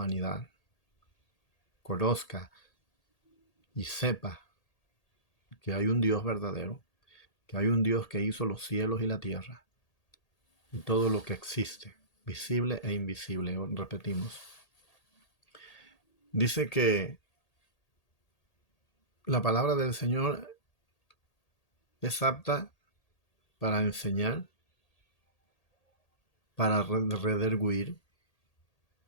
conozca y sepa que hay un Dios verdadero, que hay un Dios que hizo los cielos y la tierra y todo lo que existe, visible e invisible, repetimos. Dice que la palabra del Señor es apta para enseñar, para redarguir.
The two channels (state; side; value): late; right; 1.8 ms